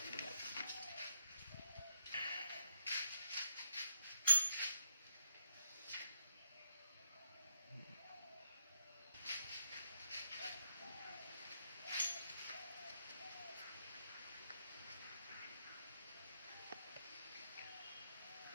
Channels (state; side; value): inverted; both; correlation -0.79